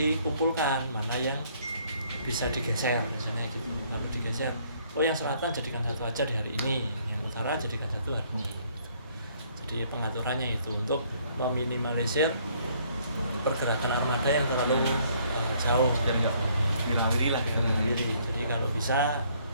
mana yang bisa digeser misalnya gitu. Kalau digeser, oh yang selatan jadikan satu aja di hari ini, yang utara jadikan satu hari ini. Jadi pengaturannya itu untuk meminimalisir pergerakan armada yang terlalu jauh Biar nggak wirawiri lah. Jadi kalau bisa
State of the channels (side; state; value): both; inverted; correlation -0.64